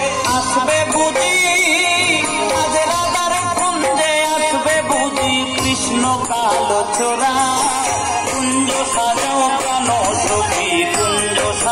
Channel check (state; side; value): identical; both; correlation 1.00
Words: আসবে বুঝি, আজ রাধার কুঞ্জে আসবে বুঝি কৃষ্ণ কালো চোরা। কুঞ্জ সাজাও প্রাণ সখী কুঞ্জ